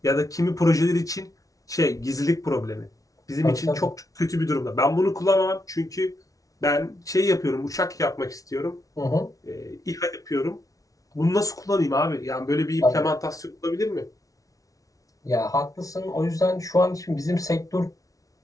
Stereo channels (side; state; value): right; late; 0.17 ms